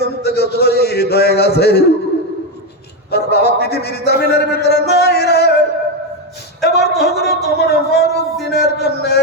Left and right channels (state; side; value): normal; both; correlation 0.09